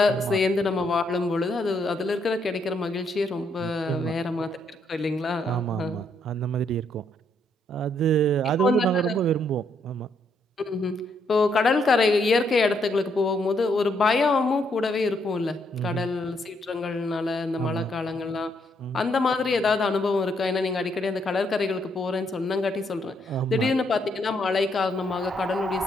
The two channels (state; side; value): normal; both; correlation 0.74